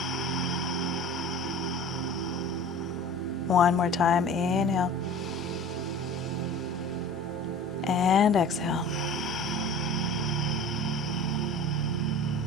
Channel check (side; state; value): both; normal; correlation 0.40